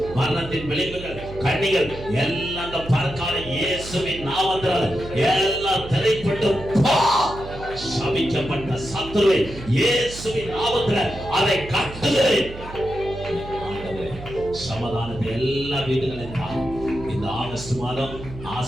மரணத்தின் விளைவுகள், கண்ணிகள் எல்லாம் அந்த பறக்காத இயேசுவின் நாமத்தால் எல்லாம் திரைப்பட்டு சபிக்கப்பட்ட சத்துருவை இயேசுவின் நாமத்தில் அதை கட்டுகிறேன். சமாதானத்தை எல்லா வீடுகளையும் இந்த ஆகஸ்ட் மாதம்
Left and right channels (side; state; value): right; noise; hum, 13 dB below the sound